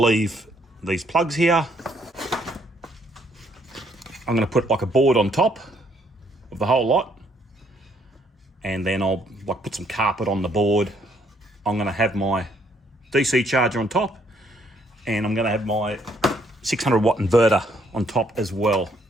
these plugs here. I'm going to put like a board on top of the whole lot, and then I'll like put some carpet on the board. I'm going to have my DC charger on top, and I'm going to have my 600 watt inverter on top as well.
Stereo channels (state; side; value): normal; both; correlation 0.68